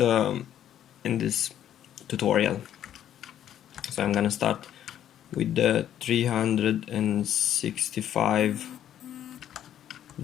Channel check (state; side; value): quieter; right; 10.8 dB